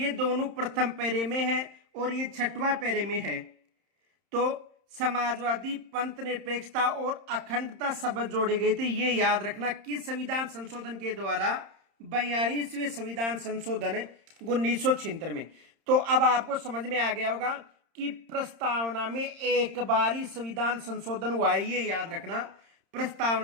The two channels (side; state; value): left; late; 31 ms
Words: दोनों प्रथम पैरे में है और ये छठवां पैरे में है। तो समाजवादी, पंथ निरपेक्षता और अखंडता शब्द जोड़े गए थे, ये याद रखना किस संविधान संशोधन के द्वारा? 42वें संविधान संशोधन 1976 में। तो अब आपको समझ में आ गया होगा कि प्रस्तावना में एक बार ही संविधान संशोधन हुआ है, ये याद रखना।